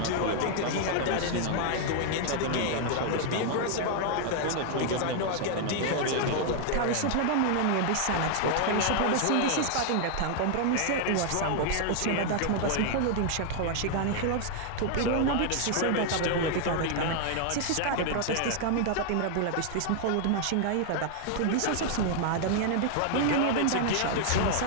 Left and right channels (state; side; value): different; both; correlation 0.00